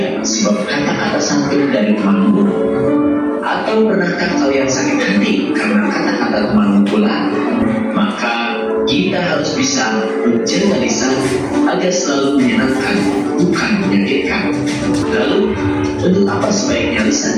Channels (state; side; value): identical; both; correlation 1.00